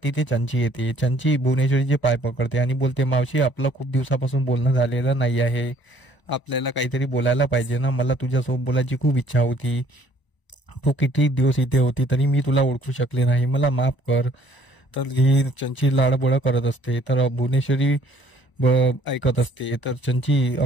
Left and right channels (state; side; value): late; right; 1.0 ms